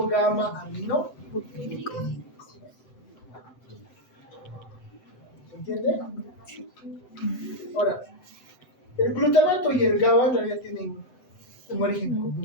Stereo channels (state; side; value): late; right; 7.9 ms